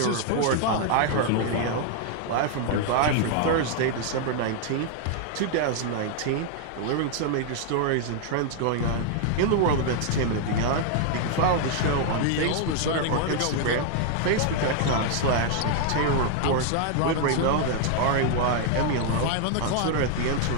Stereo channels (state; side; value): different; both; correlation 0.00